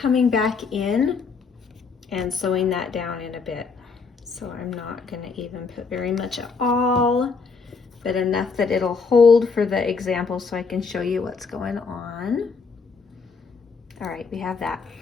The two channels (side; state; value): right; quieter; 5.0 dB